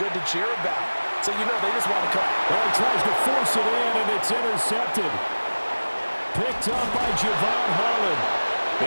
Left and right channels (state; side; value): inverted; both; correlation -1.00